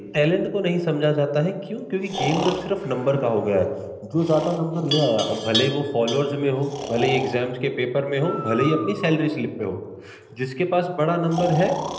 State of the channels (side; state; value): both; identical; correlation 1.00